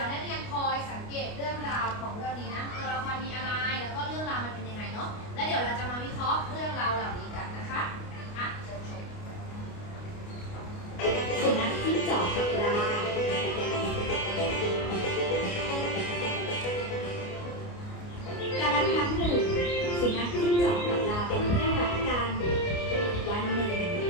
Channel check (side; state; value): right; late; 29 ms